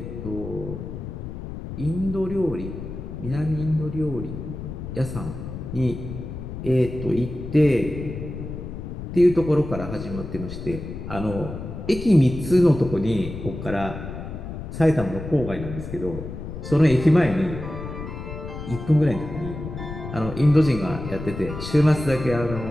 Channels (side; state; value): left; noise; rumble, 8 dB below the sound